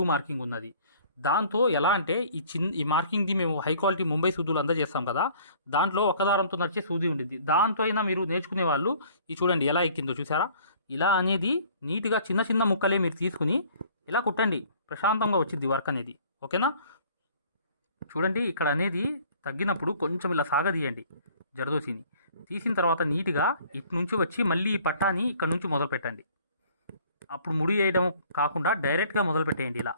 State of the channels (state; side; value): inverted; both; correlation -0.54